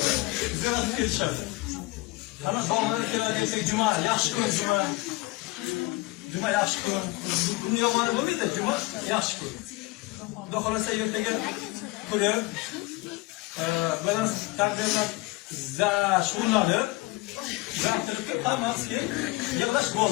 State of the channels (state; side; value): quieter; right; 21.5 dB